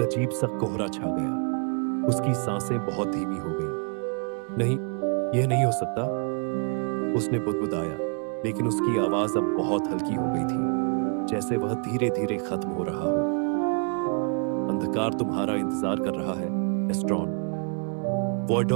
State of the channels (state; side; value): quieter; left; 38.4 dB